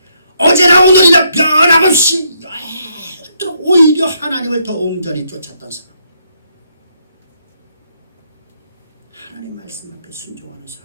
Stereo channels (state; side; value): inverted; both; correlation -0.74